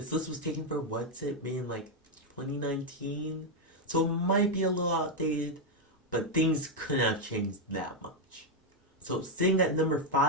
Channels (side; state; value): both; normal; correlation 0.02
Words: list was taken for what's it made in like 2019, so it might be a little outdated, but things couldn't have changed that much. So sitting at number